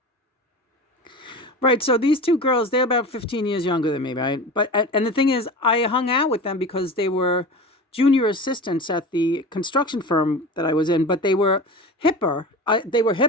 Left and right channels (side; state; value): both; normal; correlation 0.31